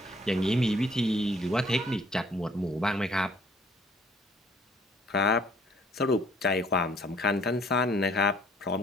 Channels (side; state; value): both; normal; correlation 0.58